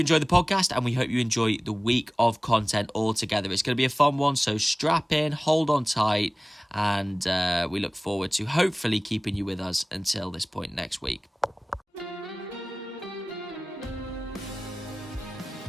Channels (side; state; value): both; normal; correlation 0.98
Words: the podcast and we hope you enjoy the week of content altogether. It's going to be a fun one, so strap in, hold on tight, and we look forward to hopefully keeping you with us until this point next week.